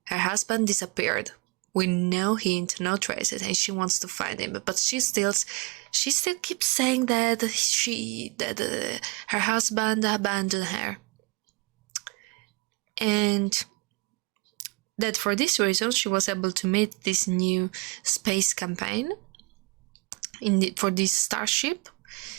her husband disappeared with no hint, no traces, and she wants to find him. But she still keeps saying that her husband abandoned her, and that for this reason she was able to meet this new space campaign for this starship,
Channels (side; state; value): left; quieter; 27.8 dB